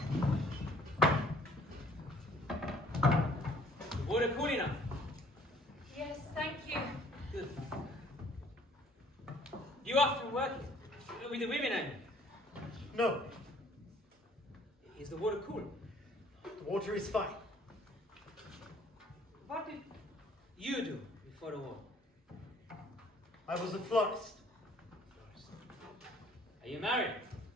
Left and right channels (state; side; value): normal; both; correlation 0.58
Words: The water cool enough? Yes, thank you. Good. Do you often work with the women, I mean? No, Is the water cool? the water is fine. What did you do before the war? I was a florist. Are you married?